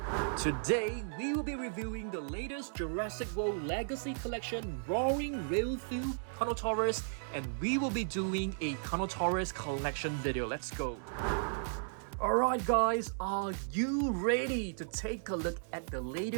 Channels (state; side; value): silent; left; digital silence